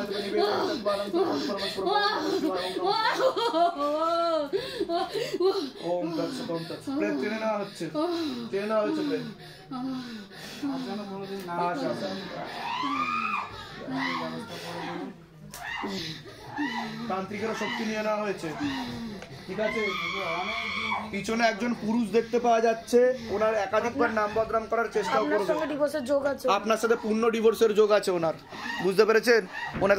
निवेदन चत्वारं ओम तत्सत ओम तत्सत प्रेत টেনে নেওয়া হচ্ছে প্রেত তান্ত্রিকের শক্তি নিয়ে নেওয়া হয়েছে ঠিক আছে পিছনে একজন পুরুষ দেখতে পাওয়া যাচ্ছে ওনার একাধিকবার নাম বদনাম করার চেষ্টা করবে ডিভোর্সের যোগ আছে আপনার সাথে পূর্ণ ডিভোর্সের যোগ আছে ওনার বুঝতে পেরেছেন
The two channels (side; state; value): both; identical; correlation 1.00